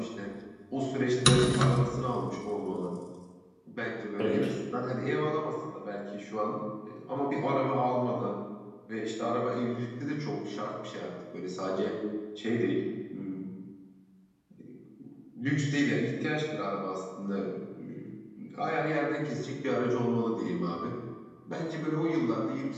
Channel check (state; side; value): identical; both; correlation 1.00